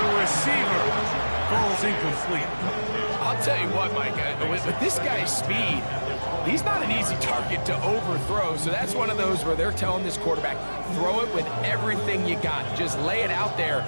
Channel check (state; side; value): inverted; both; correlation -1.00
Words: receiver. Ball's incomplete. I'll tell you what, Mike, with this guy's speed, he's not an easy target to overthrow. So that's one of those where they're telling this quarterback, throw it with everything you got. Just lay it out there.